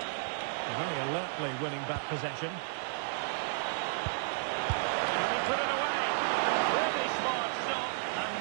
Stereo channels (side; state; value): left; silent; digital silence